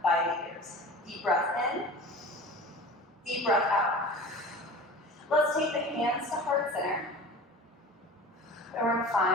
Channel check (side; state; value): both; normal; correlation 0.37